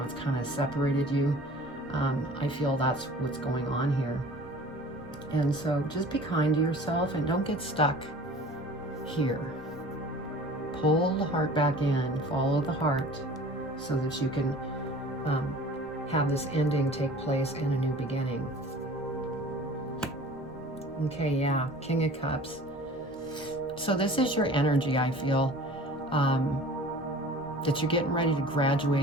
it's kind of separated you. I feel that's what's going on here. And so just be kind to yourself and don't get stuck here. Pull the heart back in, follow the heart so that you can have this ending take place in a new beginning. Okay, yeah, King of Cups. So this is your energy, I feel, that you're getting ready to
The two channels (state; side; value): noise; left; rumble, 24 dB below the sound